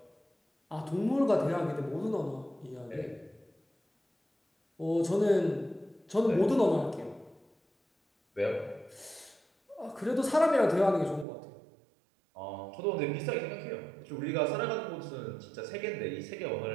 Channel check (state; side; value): drops out; left; at 11.2 s